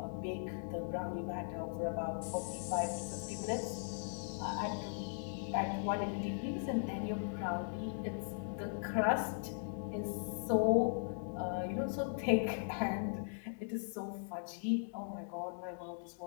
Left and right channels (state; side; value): silent; right; digital silence